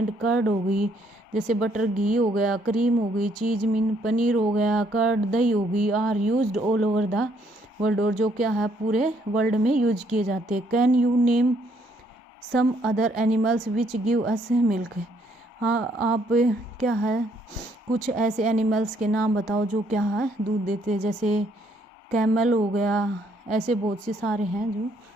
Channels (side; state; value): both; normal; correlation 0.69